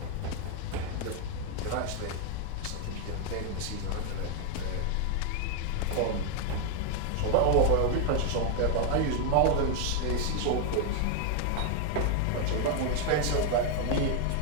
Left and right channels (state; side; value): different; both; correlation 0.00